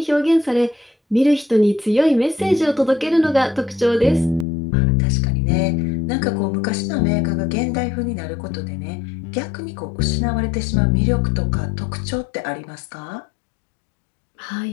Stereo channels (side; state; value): right; drops out; at 4.5 s